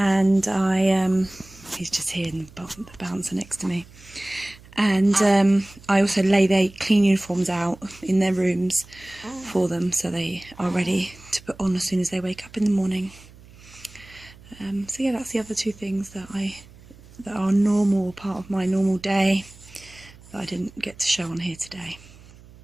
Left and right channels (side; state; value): right; noise; hum, 22 dB below the sound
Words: he's just here in the bouncer next to me. And I also lay their clean uniforms out in their rooms for them, so they are ready to put on as soon as they wake up in the morning. So yeah, that's the other two things that are normal, part of my normal day, that I didn't get to show on here today.